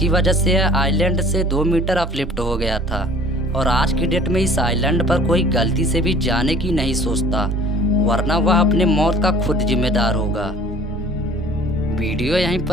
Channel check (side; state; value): both; normal; correlation 0.50